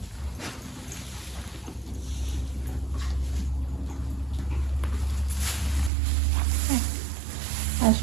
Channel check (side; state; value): left; drops out; at 5.9 s